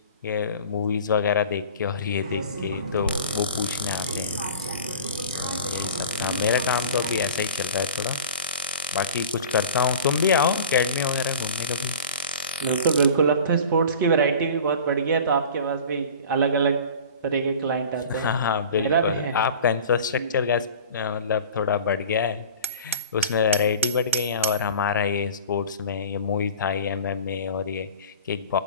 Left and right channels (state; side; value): inverted; both; correlation -0.39